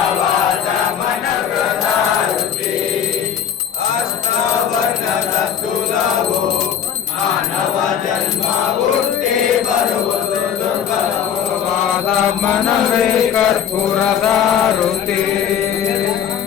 ಮನವದಾರುತಿ ಅಷ್ಟಾವರ್ಣದ ಸುಲಭೋ ಮಾನವ ಜನ್ಮ ಹುಟ್ಟಿ ಬರುವುದು ದುರ್ಗಮವಾದ ಮನವೇ ಕರ್ಪೂರದಾರುತಿ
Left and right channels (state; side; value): quieter; right; 8.4 dB